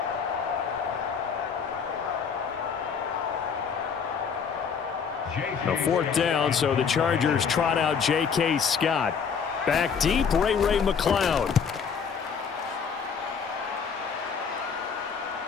A 4th down, so the Chargers trot out J.K. Scott. Back deep, Ray McCloud.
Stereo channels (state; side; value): quieter; right; 6.4 dB